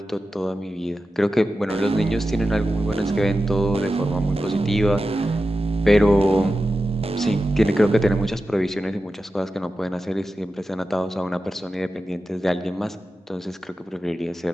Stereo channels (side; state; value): both; normal; correlation 0.92